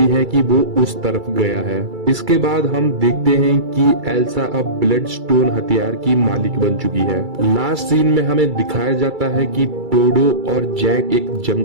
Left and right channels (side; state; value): left; late; 2.3 ms